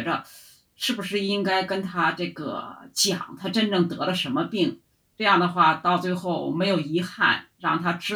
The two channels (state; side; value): identical; both; correlation 1.00